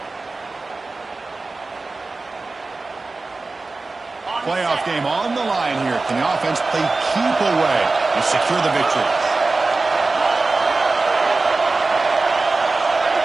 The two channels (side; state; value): left; quieter; 3.6 dB